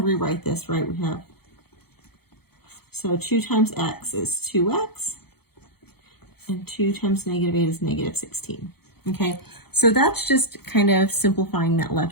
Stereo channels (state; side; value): late; right; 0.96 ms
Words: rewrite this, right? We have, so 2 times x is 2x, and 2 times negative 8 is negative 16. Okay, so that's just kind of simplifying that